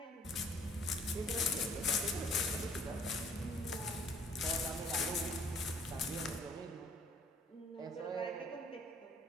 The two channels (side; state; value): both; normal; correlation 0.60